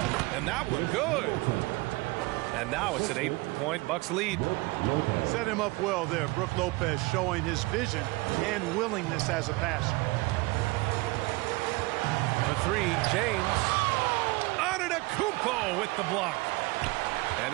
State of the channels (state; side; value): quieter; left; 23.3 dB